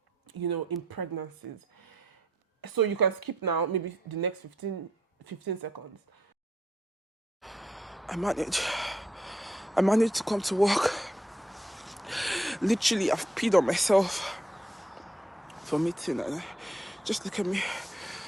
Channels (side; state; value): both; normal; correlation 0.73